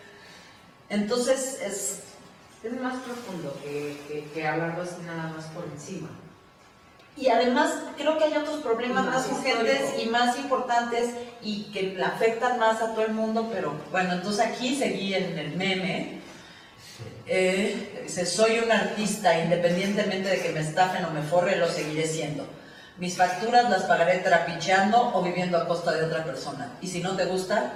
Entonces Es más profundo que hablarlo así nada más por encima. y además creo que hay otros problemas Más más urgentes histórico. y más importantes y que le afectan más a todo el mundo, pero bueno, entonces aquí seguí en el meme. Dice, soy un artista, independientemente de que me estafen o me forre, lo seguiré siendo. Mis facturas las pagaré trapicheando o viviendo a costa de otra persona. Y si no te gusta,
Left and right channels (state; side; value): identical; both; correlation 1.00